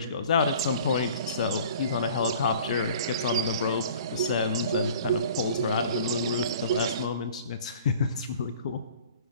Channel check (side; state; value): both; inverted; correlation -0.47